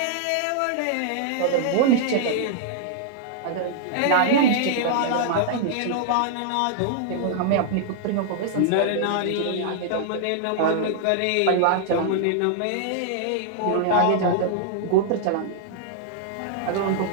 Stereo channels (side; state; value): both; different; correlation -0.01